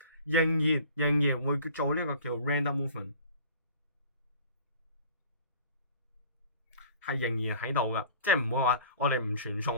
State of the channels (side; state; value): both; inverted; correlation -0.46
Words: 仍然會做呢個叫 random movement， 係仍然喺度噶，即係唔會話我哋唔傳